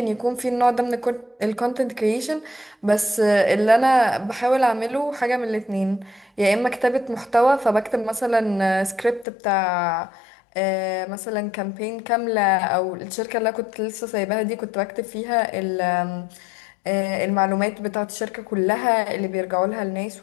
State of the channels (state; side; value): drops out; right; at 9.2 s